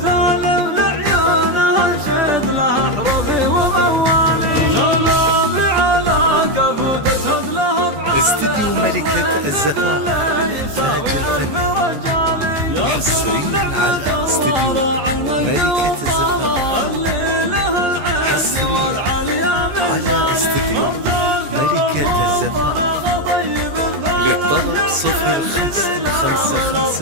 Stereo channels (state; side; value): late; left; 14 ms